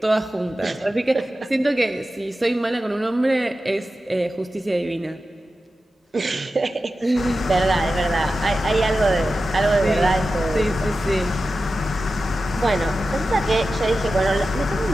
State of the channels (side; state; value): both; normal; correlation 0.93